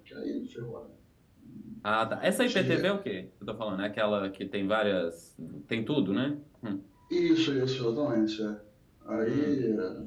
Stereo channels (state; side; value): identical; both; correlation 1.00